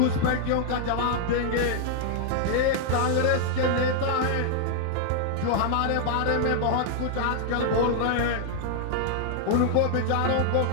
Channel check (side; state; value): both; different; correlation -0.01